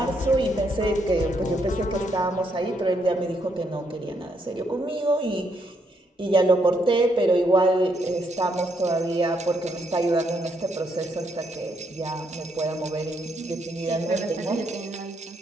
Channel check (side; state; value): both; normal; correlation 0.75